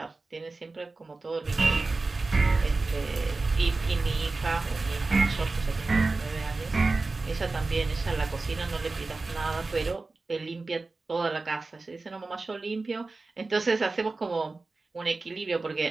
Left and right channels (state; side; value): quieter; left; 3.6 dB